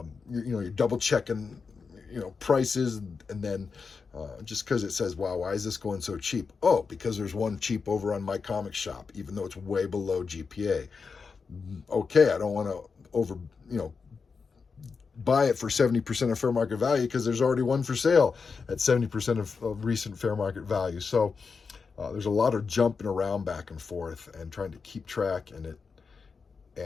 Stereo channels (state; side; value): quieter; right; 5.1 dB